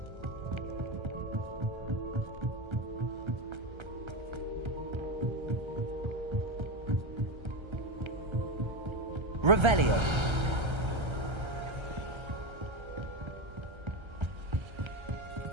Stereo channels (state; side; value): late; left; 1.3 ms